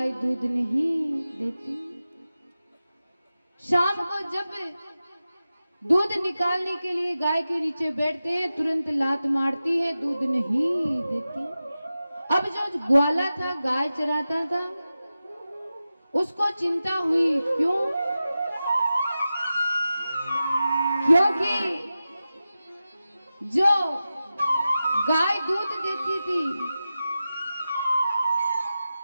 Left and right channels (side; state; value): both; inverted; correlation -0.94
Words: दूध नहीं देती। शाम को जब दूध निकालने के लिए गाय के नीचे बैठते हैं, तुरंत लात मारती है, दूध नहीं देती। अब जो ग्वाला था, गाय चराता था, उसको चिंता हुई। क्यों? क्योंकि जो गाय दूध देती थी